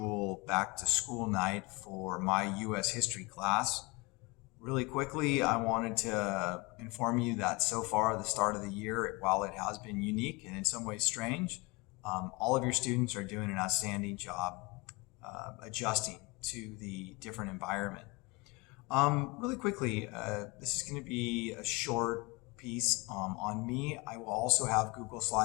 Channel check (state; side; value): quieter; right; 26.2 dB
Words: back to school night for my U.S. history class. Really quickly, I wanted to inform you that so far, the start of the year, while it has been unique and in some ways strange, all of your students are doing an outstanding job adjusting to the different environment. Really quickly, this is going to be a short piece on me. I will also have Google